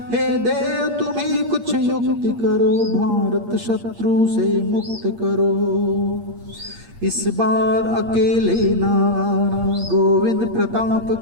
हे देव तुम ही कुछ युक्ति करो, भारत शत्रु से मुक्त करो, इस बार अकेले ना आना, गोविंद प्रताप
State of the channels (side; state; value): left; late; 8.6 ms